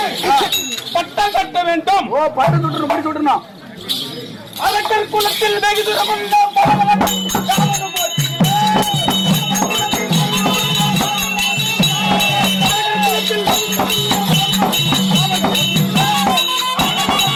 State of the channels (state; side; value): identical; both; correlation 1.00